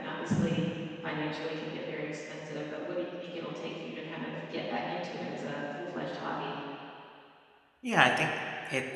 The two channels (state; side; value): identical; both; correlation 1.00